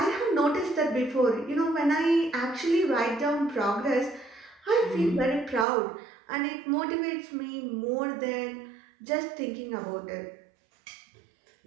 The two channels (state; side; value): drops out; left; at 5.7 s